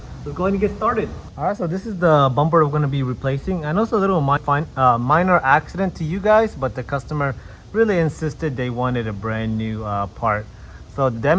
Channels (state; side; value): identical; both; correlation 1.00